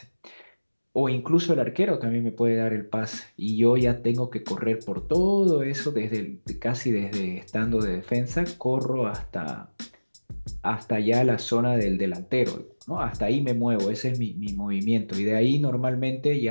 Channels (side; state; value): both; inverted; correlation -1.00